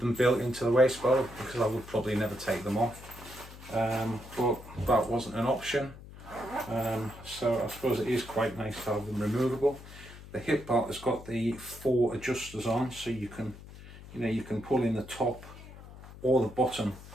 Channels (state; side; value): noise; left; hum, 16 dB below the sound